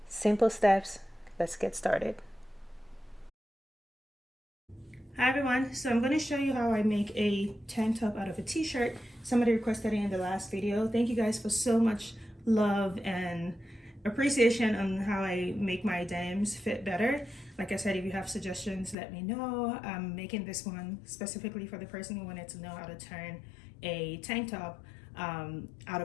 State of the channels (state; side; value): drops out; right; at 18.9 s